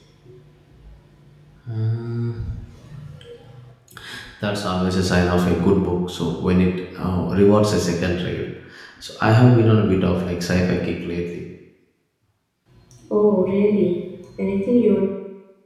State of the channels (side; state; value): both; identical; correlation 1.00